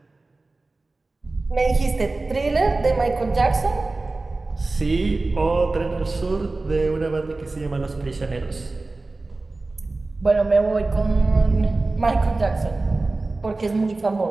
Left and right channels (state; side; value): quieter; left; 3.3 dB